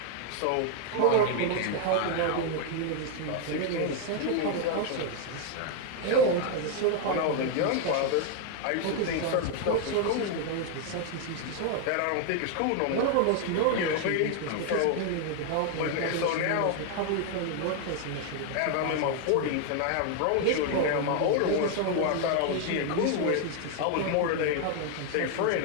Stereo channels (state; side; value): different; both; correlation 0.00